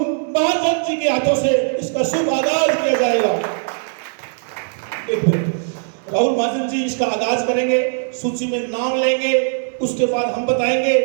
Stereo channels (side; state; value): left; silent; 61 dB below the other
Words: महाजन जी के हाथों से इसका शुभ आगाज किया जाएगा। एक मिनट, राहुल महाजन जी इसका आगाज करेंगे, सूची में नाम लेंगे, उसके बाद हम बताएंगे